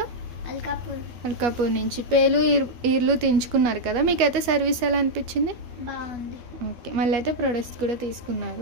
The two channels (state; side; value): late; left; 12 ms